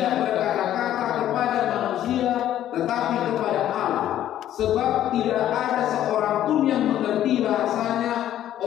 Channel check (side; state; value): right; quieter; 11.9 dB